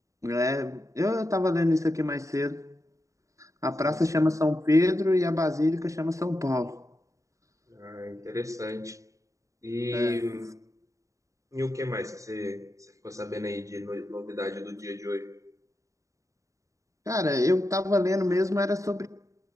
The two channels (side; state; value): left; late; 0.16 ms